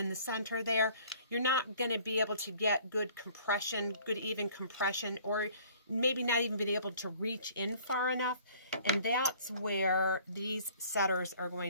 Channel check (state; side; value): inverted; both; correlation -0.53